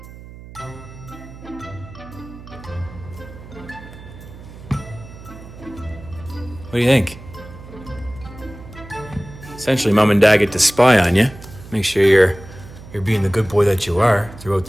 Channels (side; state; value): right; noise; hum, 16 dB below the sound